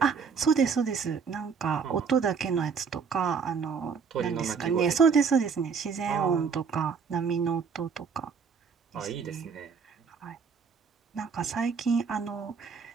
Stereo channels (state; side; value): quieter; left; 5.9 dB